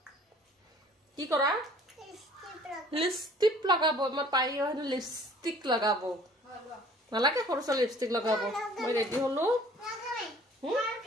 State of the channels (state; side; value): normal; both; correlation 0.53